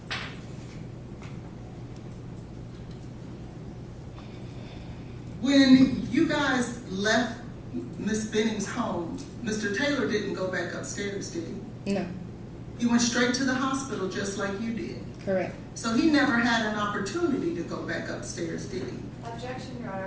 when you guys left Miss Benning's home, Mr. Taylor didn't go back upstairs, did he? No. He went straight to the hospital just like you did. Correct. So he never had an opportunity to go back upstairs, did he? Objection, Your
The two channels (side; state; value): both; identical; correlation 1.00